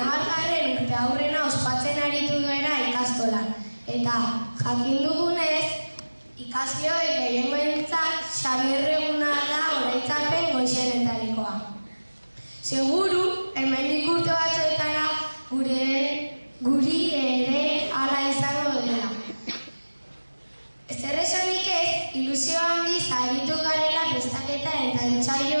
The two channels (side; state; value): both; inverted; correlation -1.00